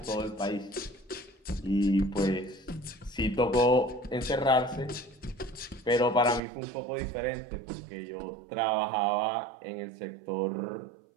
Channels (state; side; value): drops out; left; at 6.4 s